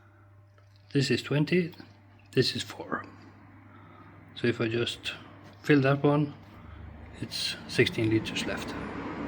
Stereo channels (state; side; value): identical; both; correlation 1.00